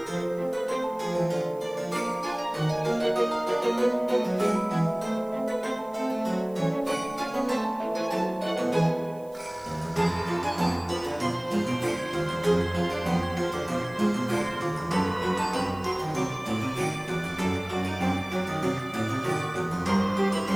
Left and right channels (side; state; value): right; noise; hiss, 27 dB below the sound